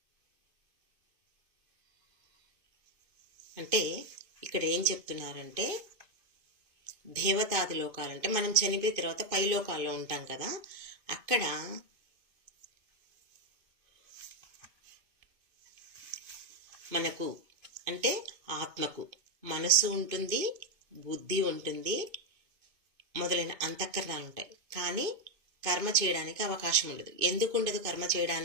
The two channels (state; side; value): late; left; 2.5 ms